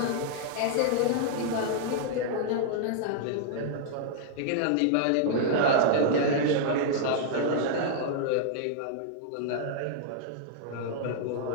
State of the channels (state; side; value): different; both; correlation -0.01